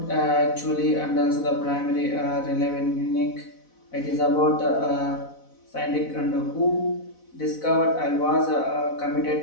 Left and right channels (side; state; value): right; late; 4.0 ms